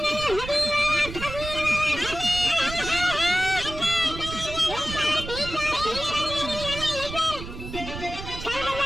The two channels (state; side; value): noise; right; rumble, 9 dB below the sound